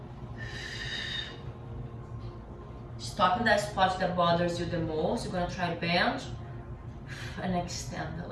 Stop in that spot that bothers you the most. You're gonna try to bend and extend the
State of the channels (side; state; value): both; identical; correlation 1.00